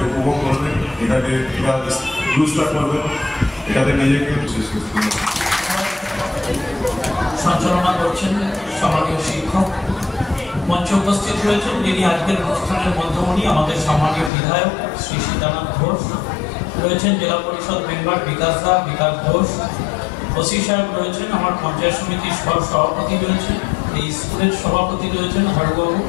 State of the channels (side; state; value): right; drops out; at 14.3 s